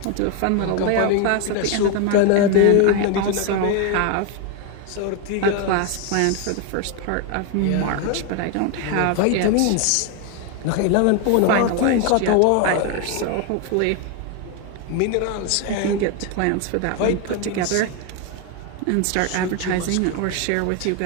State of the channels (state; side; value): different; both; correlation 0.01